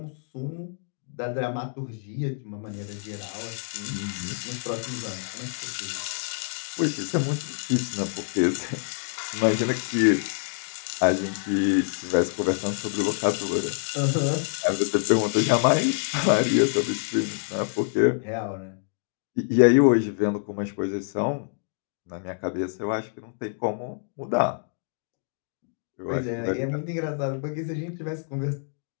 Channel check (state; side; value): silent; right; digital silence